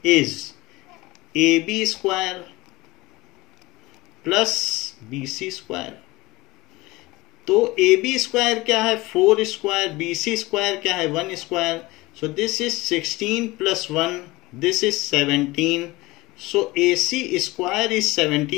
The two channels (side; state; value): right; quieter; 20.9 dB